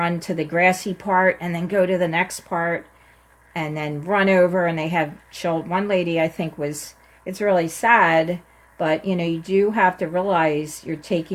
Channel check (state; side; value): identical; both; correlation 1.00